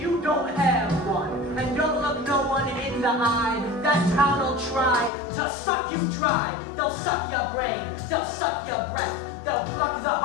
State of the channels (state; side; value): drops out; right; at 5.1 s